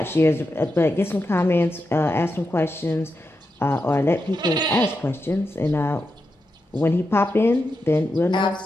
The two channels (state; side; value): normal; both; correlation 0.88